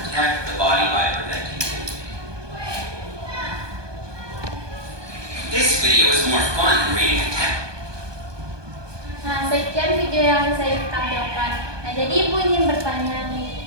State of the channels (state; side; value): late; left; 1.2 ms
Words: the body by preventing bleeding. This video is more fun than reading a text. Nah, sekian video yang saya tampilkan. Nah, jadi ibu ingin bertanya